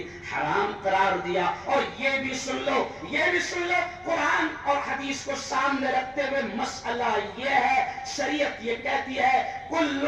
حرام قرار دیا۔ اور یہ بھی سن لو، یہ بھی سن لو، قرآن اور حدیث کو سامنے رکھتے ہوئے مسئلہ یہ ہے، شریعت یہ کہتی ہے کل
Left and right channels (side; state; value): both; identical; correlation 1.00